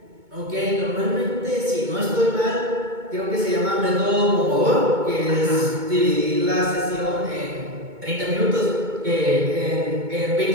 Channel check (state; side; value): late; left; 2.2 ms